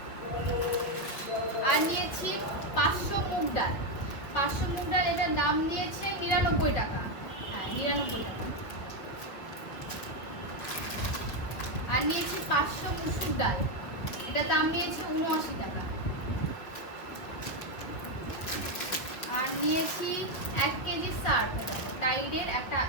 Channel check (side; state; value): right; late; 5.6 ms